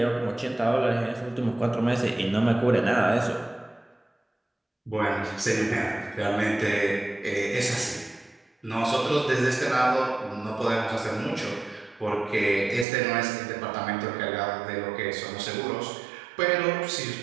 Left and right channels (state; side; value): drops out; left; at 12.9 s